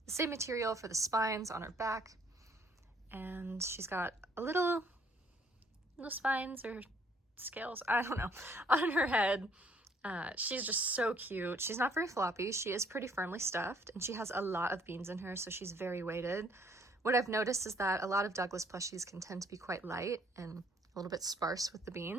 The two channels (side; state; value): both; normal; correlation 0.63